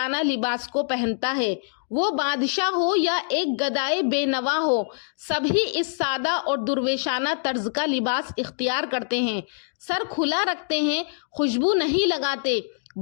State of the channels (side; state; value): right; silent; digital silence